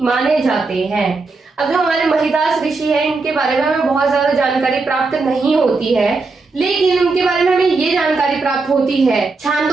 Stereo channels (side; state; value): left; quieter; 3.9 dB